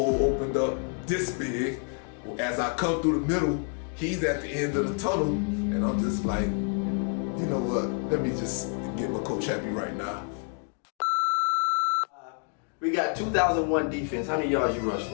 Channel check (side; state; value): right; quieter; 39.4 dB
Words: opened up this big. As I come through the middle, he's at the end of the tunnel, and I'm just like, you know what, let me just get my coach happy right now. We got 2001 defense. How many yards you rush